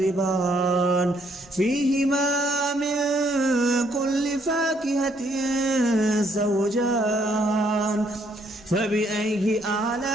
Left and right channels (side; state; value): both; normal; correlation 0.69